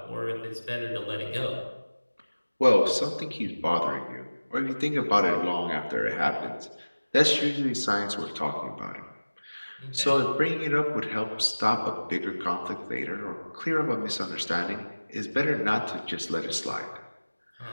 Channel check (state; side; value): inverted; both; correlation -1.00